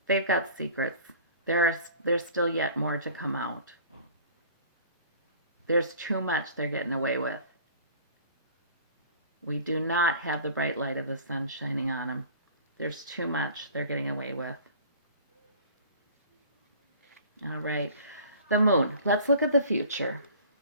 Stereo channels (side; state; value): both; inverted; correlation -0.46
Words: they've got secrets. There's still yet more to come out. There's too much they're getting away with. We do not have the bright light of the sun shining on them. There's too much they're getting away with. All right. The moon. Let's look at the future.